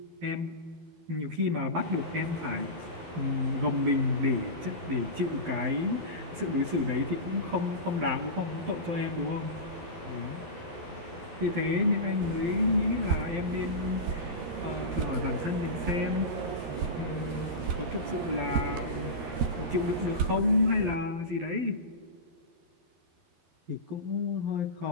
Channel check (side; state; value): left; late; 12 ms